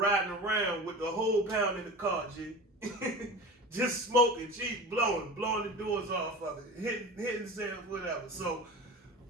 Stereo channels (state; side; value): normal; both; correlation 0.33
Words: around with the whole pound in the car, G. Just smoking, G, blowing the doors off of it, hitting sales, whatever. So